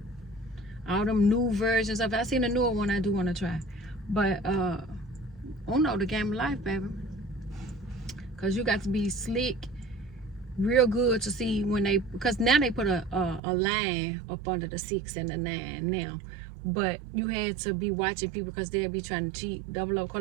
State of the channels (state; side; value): drops out; left; at 13.4 s